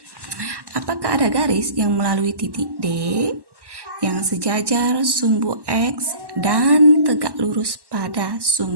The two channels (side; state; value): left; late; 1.1 ms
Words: apakah ada garis yang melalui titik D yang sejajar sumbu X dan tegak lurus pada